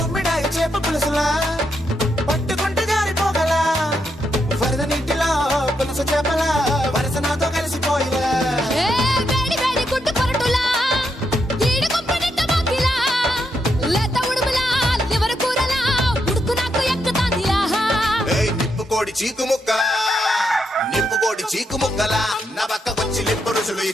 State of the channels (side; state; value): both; normal; correlation 0.81